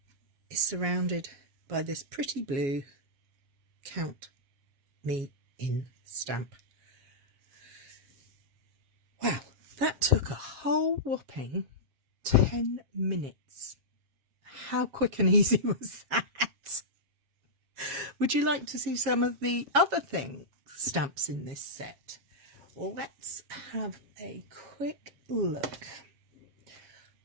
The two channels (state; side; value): late; left; 7.3 ms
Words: is surrounded by this pretty blue Count Me In stamp. Wow, that took a whole whopping 10 minutes. How quick and easy was that? Would you like to see some of the other stamps in this set? Well, let's have a quick look.